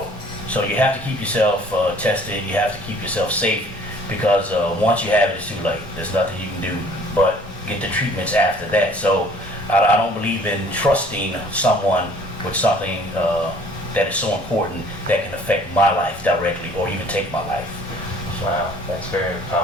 So you have to keep yourself tested, you have to keep yourself safe, because once you have it, it's too late. There's nothing you can do but get the treatments after that. So I don't believe in trusting someone with something that is so important that can affect my life directly or even take my life. Wow, that's a very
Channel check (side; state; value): both; normal; correlation 0.54